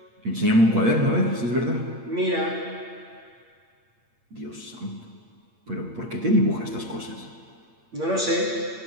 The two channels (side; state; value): left; late; 8.7 ms